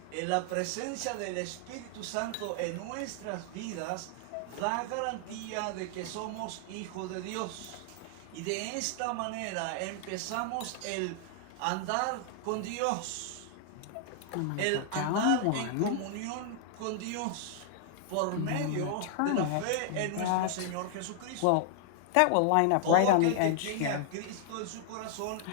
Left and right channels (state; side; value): different; both; correlation -0.01